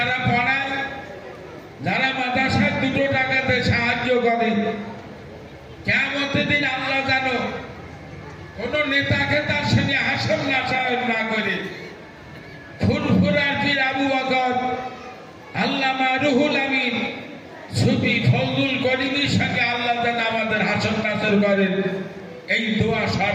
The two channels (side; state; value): both; identical; correlation 1.00